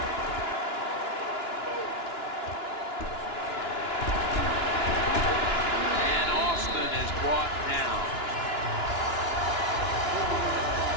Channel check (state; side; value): late; right; 2.9 ms